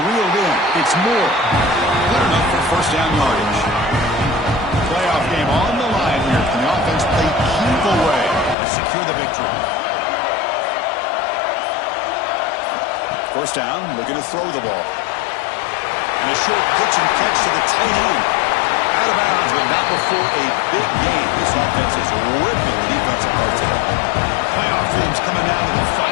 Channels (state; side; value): drops out; right; at 8.6 s